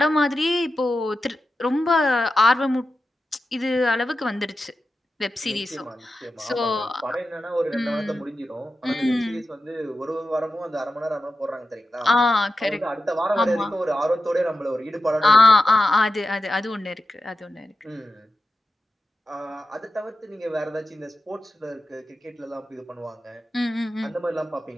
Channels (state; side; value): normal; both; correlation 0.91